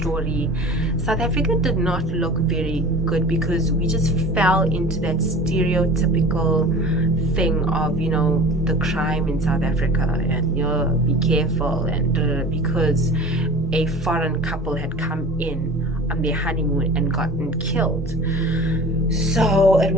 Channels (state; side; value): normal; both; correlation 0.39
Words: South Africa did not look very good, because we just fell into that stereotypical thing of, you know, the crime in South Africa, and, you know, be careful, and because a foreign couple had come in on their honeymoon and gotten killed. So it